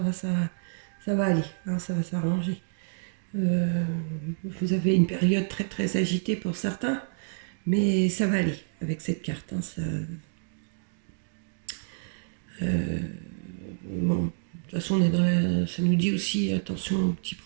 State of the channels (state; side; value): silent; left; digital silence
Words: aller, hein, ça va s'arranger. Vous avez une période très très agitée pour certains, mais ça va aller avec cette carte. Hein, bon, de toute façon, ça nous dit aussi attention aux petits